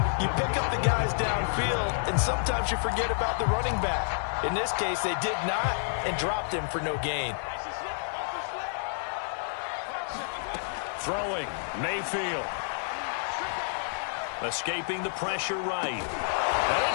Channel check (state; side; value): silent; right; 58 dB below the other